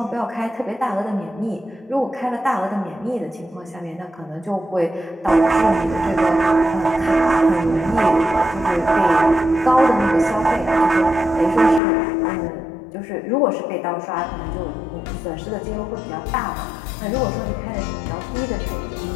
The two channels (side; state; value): right; drops out; at 11.8 s